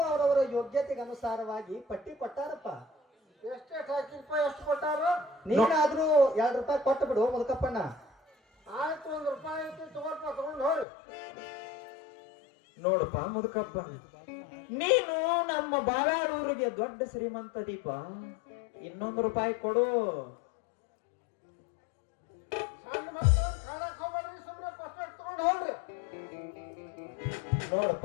ಅವರವರ ಯೋಗ್ಯತೆಗೆ ಅನುಸಾರವಾಗಿ ಪಟ್ಟಿ ಕೊಟ್ಟಾರಪ್ಪ. ಎಷ್ಟೆಷ್ಟು ಹಾಕಿಲ್ಪ ಎಷ್ಟು ಕೊಟ್ಟಾರು? ನೀನಾದ್ರೂ ₹2 ಕೊಟ್ಟು ಬಿಡು ಮುದುಕಪ್ಪಣ್ಣ. ಆಯ್ತು ₹1 ಐತಿ ತಗೋಲ್ಪ ತಗೊಂಡು ಹೋಗಿ. ನೋಡಪ್ಪ ಮುದುಕಪ್ಪ ನೀನು ನಮ್ಮ ಬಾವ್ಯಾಳೂರಿಗೆ ದೊಡ್ಡ ಶ್ರೀಮಂತ ದೀಪ. ₹1 ಕೊಡು. ಸಣ್ಣ ಮಕ್ಕಳು ಕಾಣಕ್ ಹೋಗ್ಬೇಡ್ರಿ, ಸುಮ್ಮನೆ ಪಸ್ಪೆಟ್ ತಗೊಂಡು ಹೋಗ್ರಿ.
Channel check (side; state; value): right; drops out; at 10.9 s